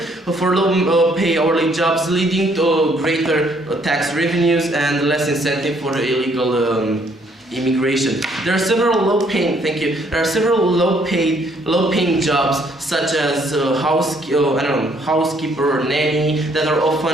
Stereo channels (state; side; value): normal; both; correlation 0.66